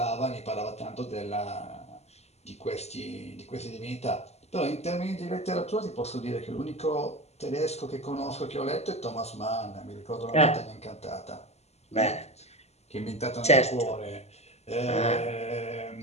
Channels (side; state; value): right; late; 0.31 ms